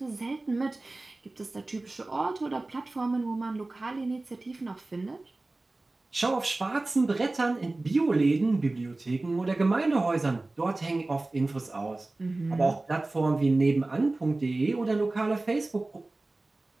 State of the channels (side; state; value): left; quieter; 3.0 dB